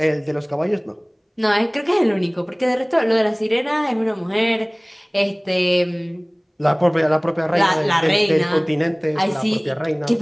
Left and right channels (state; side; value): identical; both; correlation 1.00